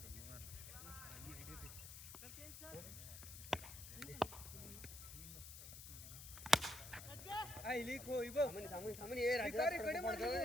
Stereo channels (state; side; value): noise; left; hiss, 11 dB below the sound